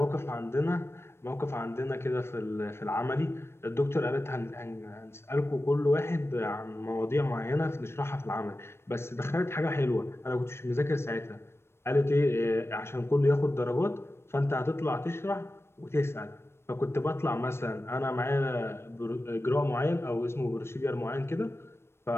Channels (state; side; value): late; right; 0.12 ms